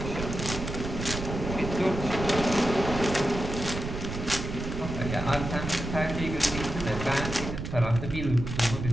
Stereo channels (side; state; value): right; noise; rumble, 6 dB below the sound